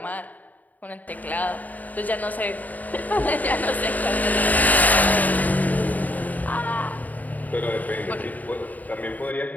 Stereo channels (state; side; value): late; right; 0.078 ms